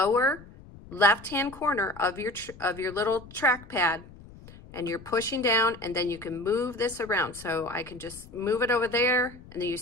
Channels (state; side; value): noise; left; rumble, 19 dB below the sound